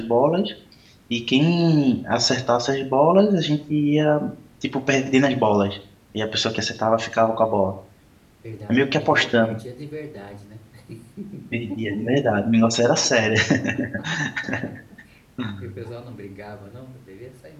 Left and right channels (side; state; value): both; identical; correlation 1.00